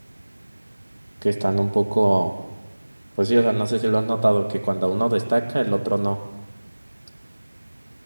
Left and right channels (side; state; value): both; inverted; correlation -1.00